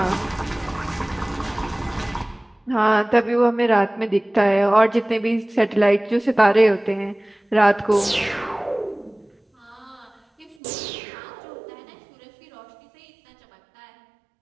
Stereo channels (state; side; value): drops out; left; at 10.6 s